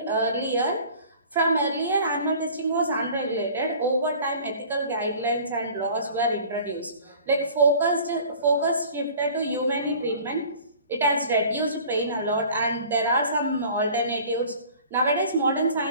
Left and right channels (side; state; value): both; inverted; correlation -0.46